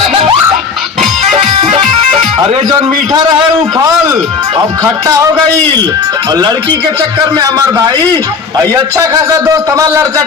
अरे जो मीठा रहे वो फल अब खट्टा हो गई और लड़की के चक्कर में हमार भाई अच्छा खासा दोस्त हमार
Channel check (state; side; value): quieter; right; 5.2 dB